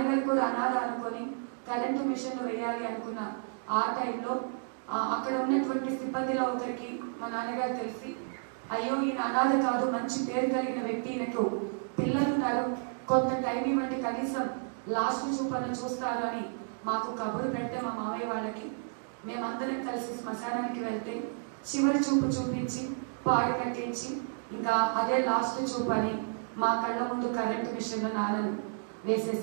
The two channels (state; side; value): silent; left; digital silence